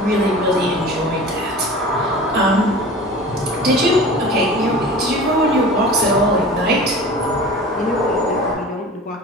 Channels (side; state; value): both; normal; correlation 0.38